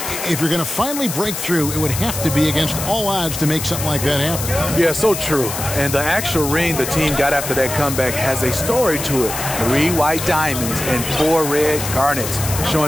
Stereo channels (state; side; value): noise; left; hiss, 6 dB below the sound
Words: If you're going to finally break through, it would have to be against all odds to make something like that happen. Yeah, so true. And the actual ring the team got after that comeback has a story to it. 3 white diamonds and 4 red garnets,